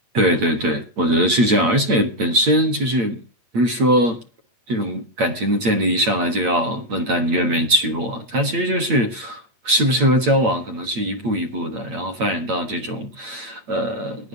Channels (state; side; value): late; left; 8.7 ms